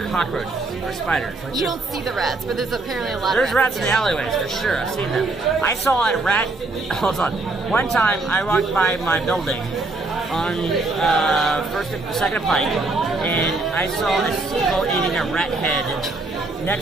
cockroaches or spiders. Like you don't see the rats, but there's apparently a lot There's of rats rats in the alleyways, for sure. I've seen them. I saw a rat... Hold on. One time, I walked by my building on second Pike, and I saw a seagull eating a rat head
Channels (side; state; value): left; quieter; 3.3 dB